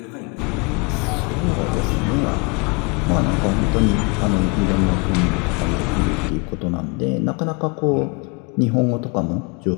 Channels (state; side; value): quieter; right; 31.6 dB